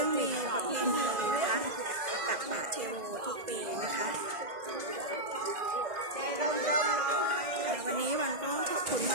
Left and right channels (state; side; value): late; left; 2.0 ms